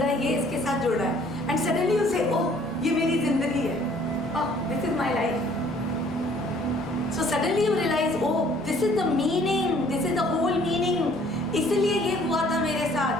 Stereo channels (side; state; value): both; normal; correlation 0.58